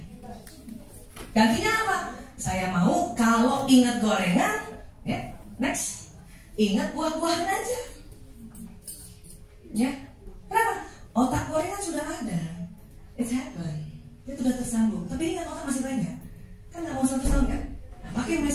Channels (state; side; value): identical; both; correlation 1.00